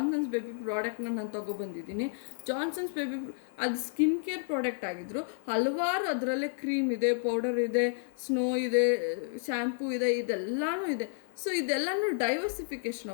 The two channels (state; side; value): silent; right; digital silence